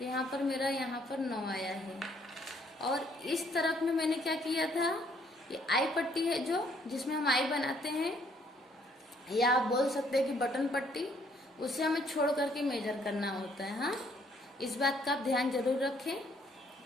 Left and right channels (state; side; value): normal; both; correlation 0.66